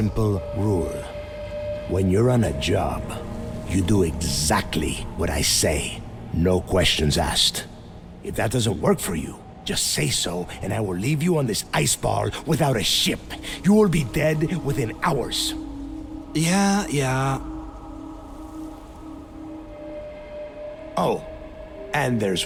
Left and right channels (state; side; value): identical; both; correlation 1.00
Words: rule. When you're on a job, you do exactly what I say, no questions asked. If that doesn't work for you, just say so, and I will leave you on this ice ball without a ship. You will be dead within hours. Yeah. Oh, and there's